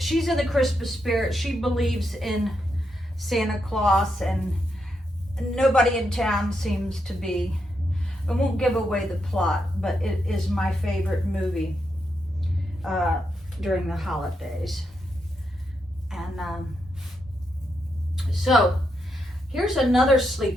in the Christmas spirit. She believes in Santa Claus, and nobody in town seems to be. I won't give away the plot, but it is my favorite movie during the holidays. And so here's another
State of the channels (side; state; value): both; normal; correlation 0.82